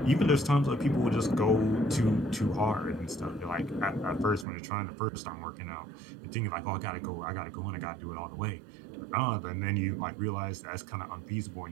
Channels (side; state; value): left; drops out; at 4.5 s